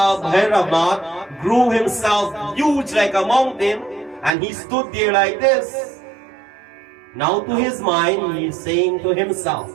Bhairava grew himself huge like a mountain, and he stood there like this. Now to his mind, he is saying to himself,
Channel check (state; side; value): drops out; left; at 4.3 s